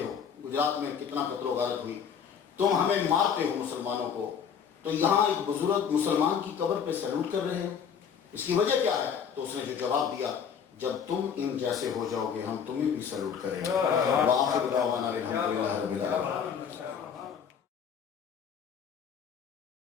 ہو، گجرات میں کتنا قتل و غارت ہوئی، تم ہمیں مارتے ہو مسلمانوں کو، تو یہاں ایک بزرگ مسلمان کی قبر پہ سیلوٹ کر رہے ہو، اس کی وجہ کیا ہے؟ تو اس نے جو جواب دیا، جب تم ان جیسے ہو جاؤ گے ہم تمہیں بھی سیلوٹ کریں گے۔ وآخر دعوانا الحمدللہ رب العالمین۔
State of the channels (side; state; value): right; quieter; 7.4 dB